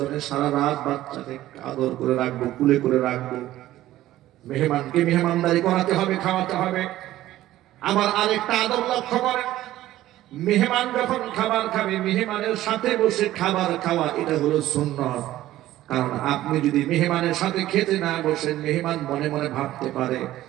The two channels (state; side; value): quieter; left; 14.6 dB